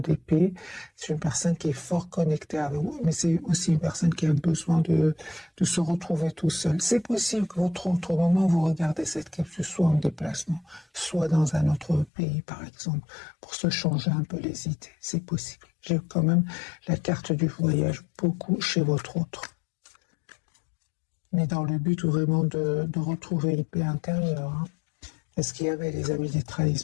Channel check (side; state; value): right; drops out; at 12.1 s